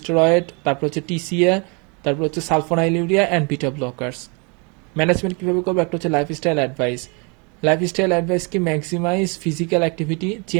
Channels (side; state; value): left; quieter; 32.6 dB